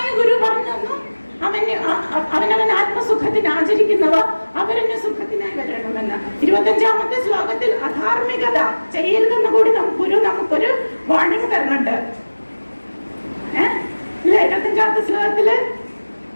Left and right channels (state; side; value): inverted; both; correlation -1.00